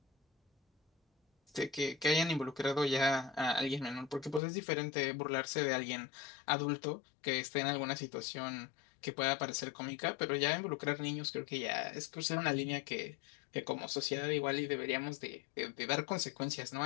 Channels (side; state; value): right; drops out; at 4.4 s